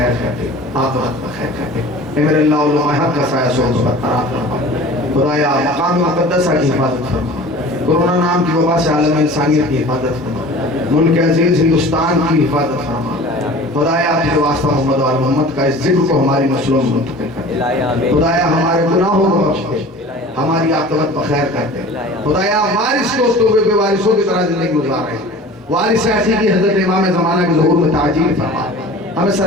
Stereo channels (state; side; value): normal; both; correlation 0.42